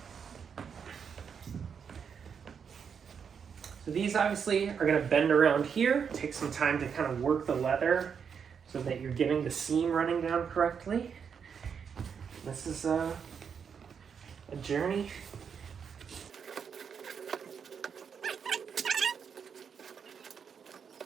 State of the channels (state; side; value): quieter; left; 6.8 dB